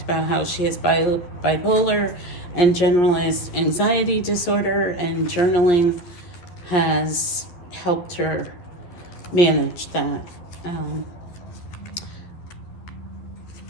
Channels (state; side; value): late; right; 11 ms